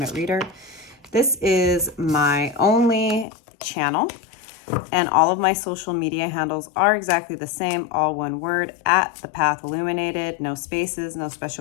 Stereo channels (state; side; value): drops out; right; at 3.2 s